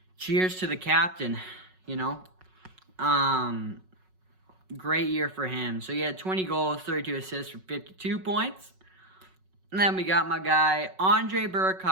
cheers to the captain, Great year for him. So, he had 20 goals, 32 assists for 52 points. And then we got my guy, Andre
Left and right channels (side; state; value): left; late; 5.4 ms